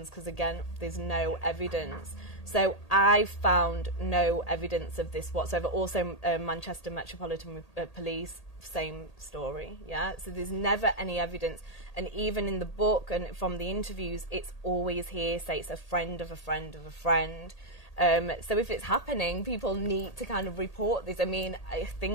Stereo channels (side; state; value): right; late; 1.8 ms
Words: because, again, there's no evidence. So I found no evidence of this whatsoever. Also, Manchester Metropolitan Police, same story, yeah? So there's never any evidence. And even in the book and from the interviews, it's always hearsay. It's a friend of a friend of a friend. So if it's happening, people need to kind of report this. I mean, I